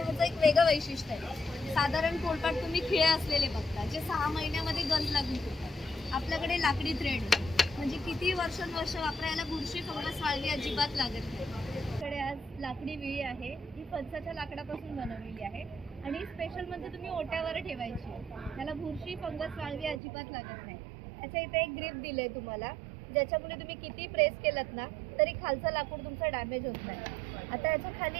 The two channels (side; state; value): left; drops out; at 20.0 s